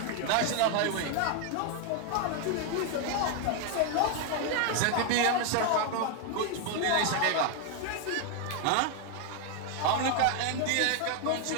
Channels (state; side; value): different; both; correlation 0.01